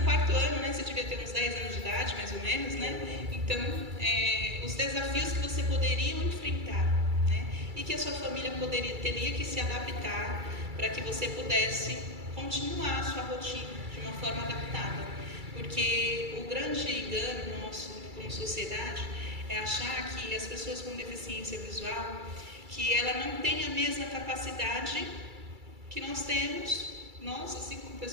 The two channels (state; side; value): late; left; 2.3 ms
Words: 4º ano, né? Você devia ter uns 10 anos de idade, mais ou menos, né? Então, os desafios que você poderia enfrentar, né? E que a sua família teria que se adaptar para que você pudesse continuar a sua rotina de uma forma adaptada. Porque o grande engano nosso como sociedade é achar que as pessoas com deficiência visual, que ela não tem a mesma capacidade que nós temos, nós, assim como